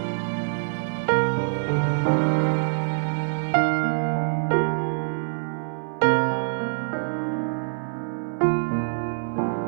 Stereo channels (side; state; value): left; silent; 62 dB below the other